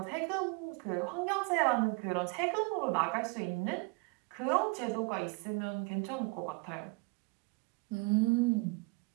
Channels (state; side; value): quieter; left; 29.1 dB